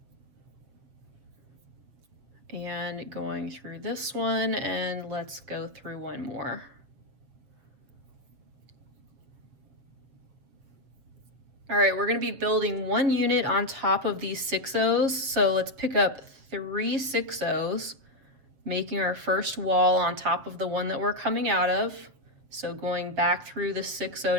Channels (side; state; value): left; late; 7.6 ms